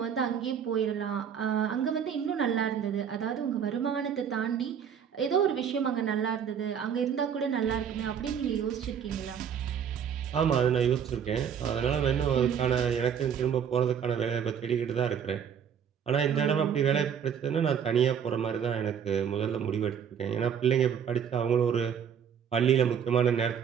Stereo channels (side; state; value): left; quieter; 7.9 dB